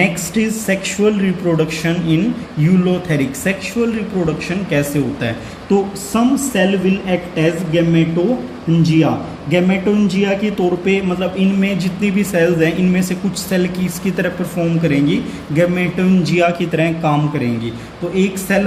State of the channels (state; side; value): identical; both; correlation 1.00